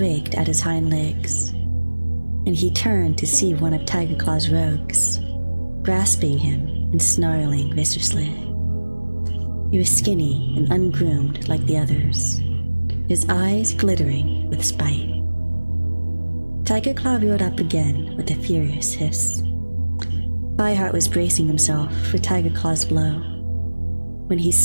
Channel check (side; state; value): both; inverted; correlation -1.00